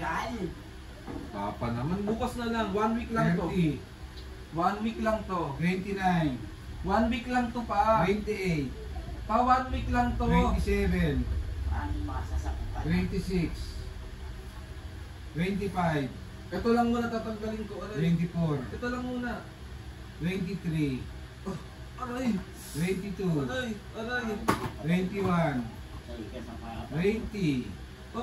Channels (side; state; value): both; identical; correlation 1.00